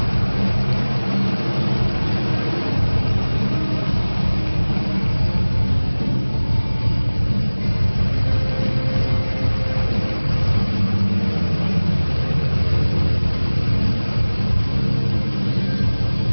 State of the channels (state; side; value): inverted; both; correlation -1.00